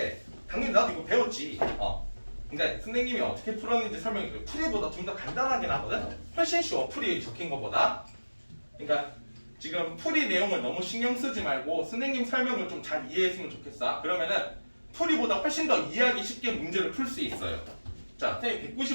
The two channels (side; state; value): both; inverted; correlation -1.00